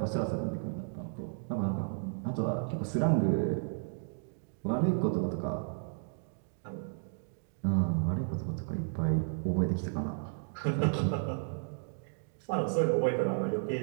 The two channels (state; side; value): silent; left; digital silence